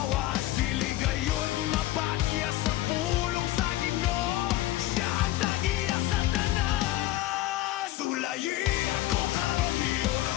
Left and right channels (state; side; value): quieter; right; 15.8 dB